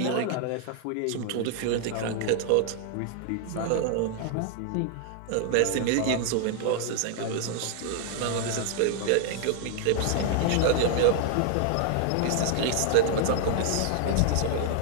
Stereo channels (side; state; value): both; different; correlation 0.00